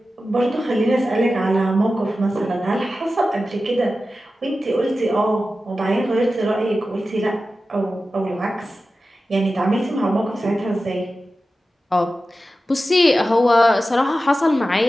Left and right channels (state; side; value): normal; both; correlation 0.93